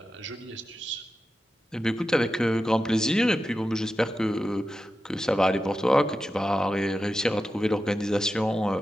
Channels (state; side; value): normal; both; correlation 0.91